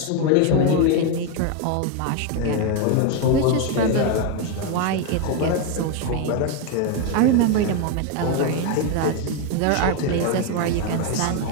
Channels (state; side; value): different; both; correlation 0.01